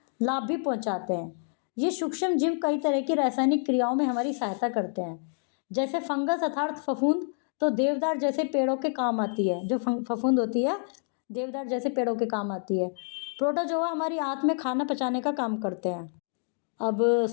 लाभ भी पहुंचाते हैं। ये सूक्ष्म जीव कई तरह की रासायनिक क्रियाओं में हमारी सहायता करते हैं। जैसे फंगस अर्थात फफूंद तो देवदार जैसे पेड़ों के काम आती है। जो फफूंद होती है देवदार जैसे पेड़ों के काम आती है। प्रोटोजोआ हमारी आंत में खाना पचाने का काम करते हैं। अब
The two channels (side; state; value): right; silent; 59 dB below the other